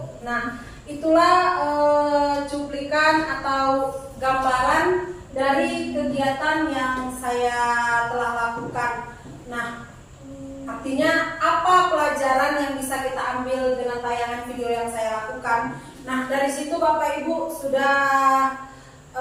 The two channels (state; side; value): identical; both; correlation 1.00